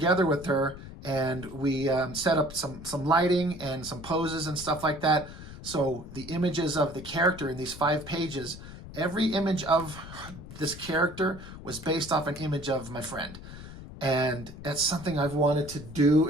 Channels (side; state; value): left; noise; rumble, 14 dB below the sound